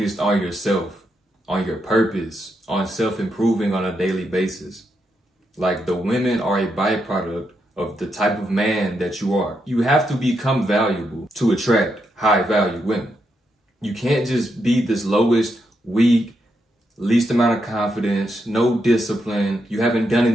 on yourself, on your purpose, on self-improving on a daily basis. Like, the women are a byproduct of the type of man that you are. You have to become valuable to attract high-value women. You can't just be this lowest, weak, least amount of confidence, no discipline. You haven't done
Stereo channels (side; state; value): both; normal; correlation 0.82